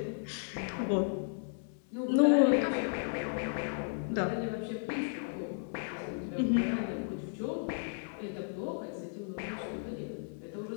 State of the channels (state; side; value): silent; right; 55 dB below the other